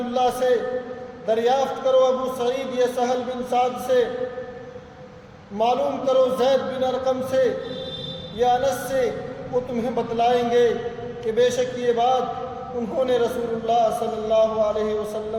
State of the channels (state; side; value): identical; both; correlation 1.00